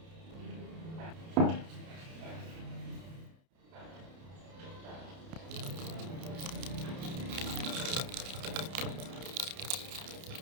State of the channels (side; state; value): left; late; 30 ms